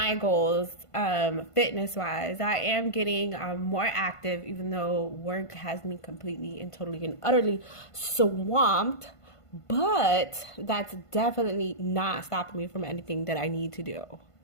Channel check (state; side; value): late; right; 1.5 ms